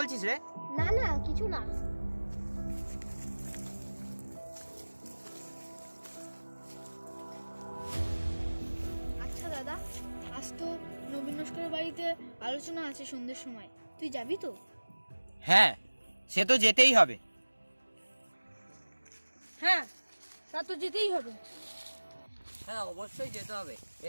রে? না না, কিছু না। আচ্ছা দাদা, আজ তো নবীন নস্করের বাড়িতে আলোচনা আছে সন্ধ্যের সময়, তুই যাবি তো? হ্যাঁ, সে তো যেতেই হবে। হ্যাঁ, তা তো যেতেই হবে। হ্যাঁ অবশ্যই যেতে হবে,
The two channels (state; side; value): inverted; both; correlation -1.00